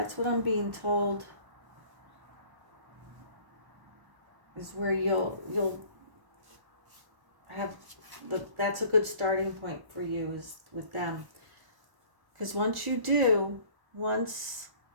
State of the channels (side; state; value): left; late; 1.1 ms